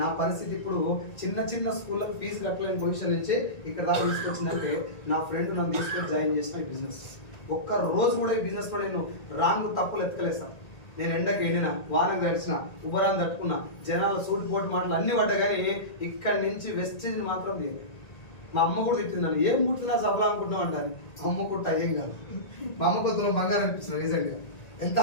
నా పరిస్థితి ఇప్పుడు చిన్న స్కూళ్ళకి ఫీజు కట్టలేని పొజిషన్ నుంచి ఇక్కడ దాకా తీసుకొచ్చిందంటే నా ఫ్రెండ్ నన్ను తీసుకొని జాయిన్ చేసిన ఈ బిజినెస్. ఒక్క రోజు కూడా ఈ బిజినెస్లో నేను రాంగ్ తప్పులు ఎత్తుకలేసాను. నేను ఎండకి ఎండిన, వానకు తడిచిన, ఉబరాన్ని తట్టుకున్నా, జనాల సూట్ పోటు మాటలు అన్ని పడ్డా కానీ ఇక్కడి నుంచి వెస్టేజ్ని మాత్రం తీయలేదు. మా అమ్మ కూడా తిట్టిందని ఏం కుట్టినా సఫలం అనుకుంటున్నాం అంటారు. అమ్మ కుట్ట ఏం కాదు. మా అమ్మ కొత్తలో బంగారం అనిపిస్తుంది రీసెంట్గా. ఎంత?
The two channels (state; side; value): late; right; 1.9 ms